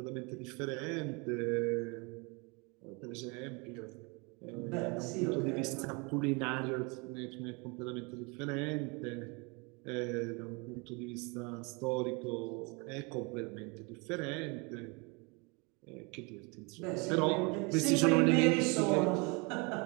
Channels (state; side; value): quieter; left; 29.9 dB